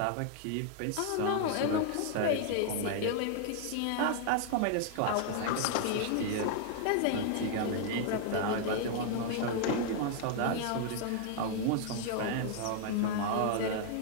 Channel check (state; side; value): different; both; correlation 0.00